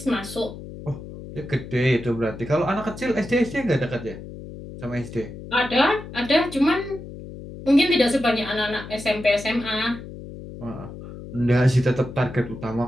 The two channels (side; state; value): left; noise; hum, 13 dB below the sound